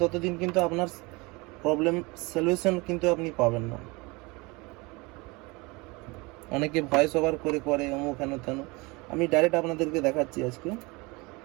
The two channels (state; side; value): quieter; left; 25.4 dB